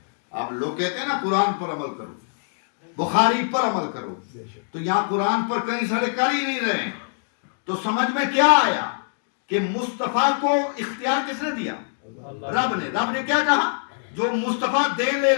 آپ لوگ کہتے ہیں نا قرآن پر عمل کرو، بخاری پر عمل کرو، تو یہاں قرآن پر کئی سارے کر ہی نہیں رہے ہیں. تو سمجھ میں کیا آیا کہ مصطفیٰ کو اختیار کس نے دیا؟ رب نے. رب نے کیا کہا؟ جو مصطفیٰ دے لے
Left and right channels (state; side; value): silent; right; digital silence